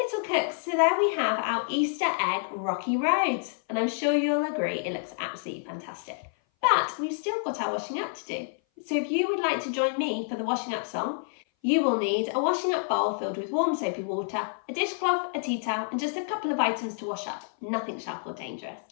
cooks, so there we have our Easter egg rocky road, and I'm sure you'll agree it looks absolutely fantastic. But we've still got our washing up to do. So if you would like to join me for the washing up song, you will need a washing up bowl filled with warm soapy water, a dishcloth, a tea towel, and just a couple of items to wash up. Nothing sharp or dangerous.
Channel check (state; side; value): silent; right; 57 dB below the other